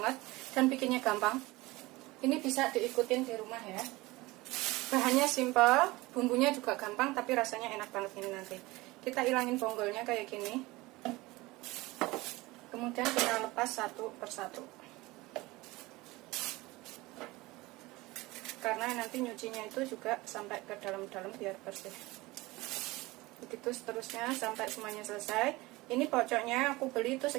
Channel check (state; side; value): quieter; left; 21.0 dB